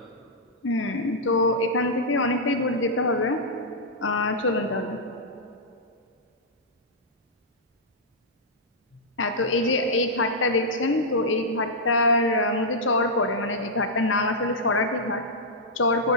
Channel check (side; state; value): both; normal; correlation -0.09